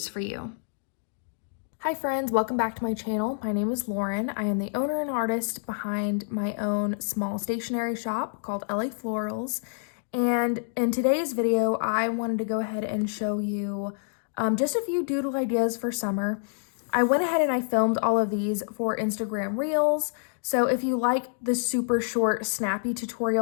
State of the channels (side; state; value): right; silent; digital silence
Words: for you. Hi friends, welcome back to my channel. My name is Lauren. I am the owner and artist behind my own small stationery shop called LA Florals. And in today's video, I wanted to go ahead and show you just a few doodle ideas for summer. I went ahead and I filmed all of these for Instagram Reels. So if you like the super short, snappy